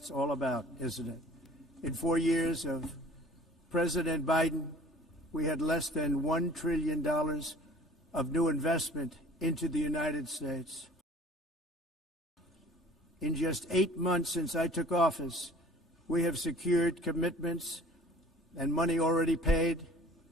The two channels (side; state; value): both; normal; correlation 0.49